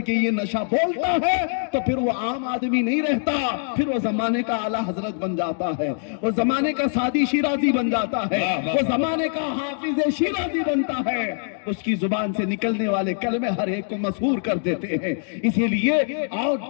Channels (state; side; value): silent; right; digital silence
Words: کے یہ نشہ بولتا ہے تو پھر وہ عام آدمی نہیں رہتا، پھر وہ زمانے کا اعلیٰ حضرت بن جاتا ہے، وہ زمانے کا سادی شیرازی بن جاتا ہے، وہ زمانے کا حافظ شیرازی بنتا ہے، اس کی زبان سے نکلنے والے کلمے ہر ایک کو مسحور کر دیتے ہیں۔ اسی لیے آؤ